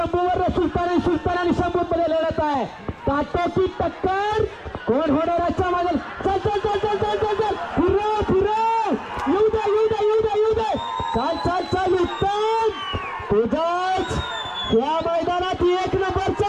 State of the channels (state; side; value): identical; both; correlation 1.00